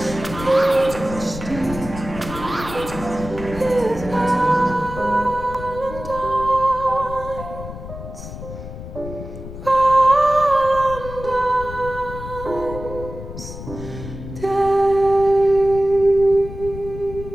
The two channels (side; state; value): left; noise; rumble, 11 dB below the sound